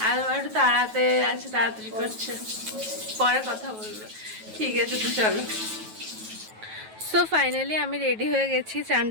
আর মা একটু তাড়াতে আছে, তাড়াতাড়ি করছে, পরে কথা বলবো। ঠিক আছে, তো চলো। সো ফাইনালি আমি রেডি হয়ে গেছি চান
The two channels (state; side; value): late; left; 9.3 ms